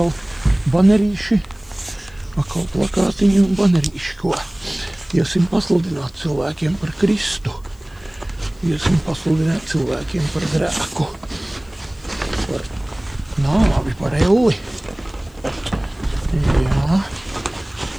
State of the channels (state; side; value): noise; left; hiss, 30 dB below the sound